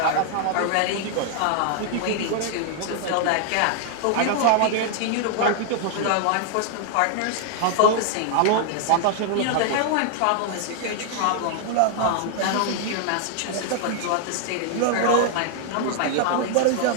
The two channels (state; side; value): different; both; correlation 0.00